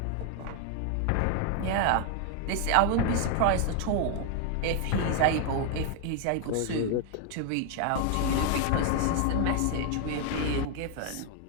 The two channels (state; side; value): different; both; correlation 0.00